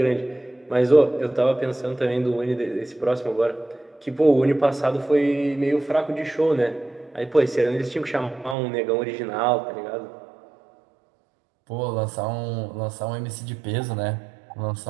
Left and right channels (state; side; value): drops out; left; at 8.6 s